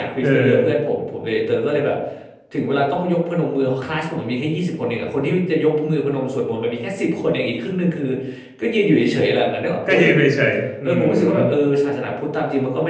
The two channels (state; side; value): identical; both; correlation 1.00